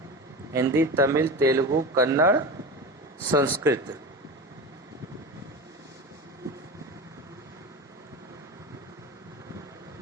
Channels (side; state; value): both; normal; correlation 0.27